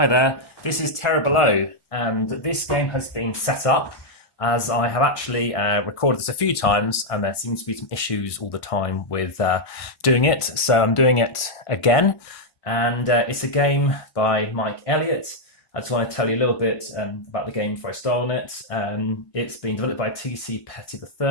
there, this is Terra Below, and this game has been set up as I have actually recorded this a few times, and there seems to be some issues all the time with doing it, so I'm doing it again. And it's a game by Mike Elliott. I just want to tell you a little bit about the game before I start on it. It's been developed by T.C. Petty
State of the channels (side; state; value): right; late; 1.6 ms